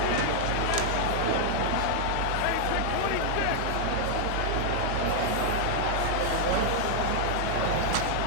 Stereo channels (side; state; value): both; different; correlation 0.00